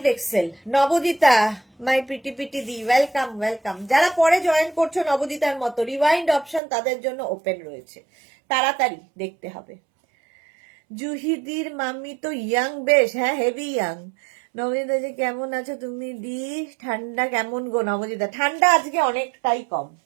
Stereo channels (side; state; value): left; drops out; at 6.6 s